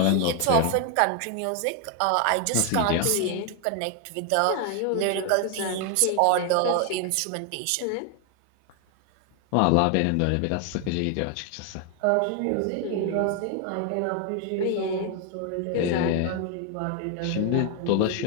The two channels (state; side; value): different; both; correlation 0.01